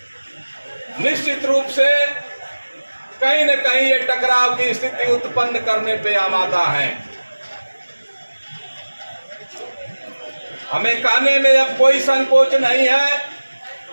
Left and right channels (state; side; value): inverted; both; correlation -1.00